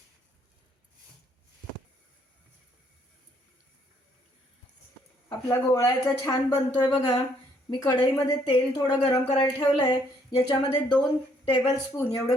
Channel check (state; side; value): normal; both; correlation 0.68